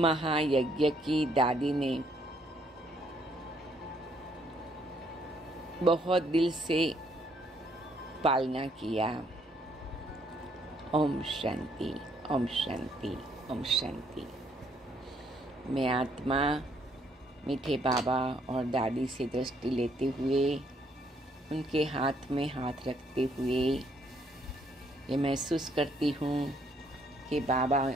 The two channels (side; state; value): both; normal; correlation 0.69